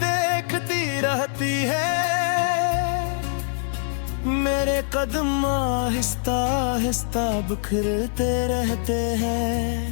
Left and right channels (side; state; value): right; silent; digital silence